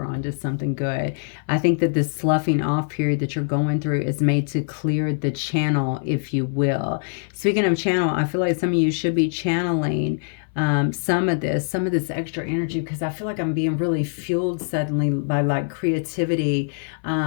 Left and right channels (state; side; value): silent; right; 61 dB below the other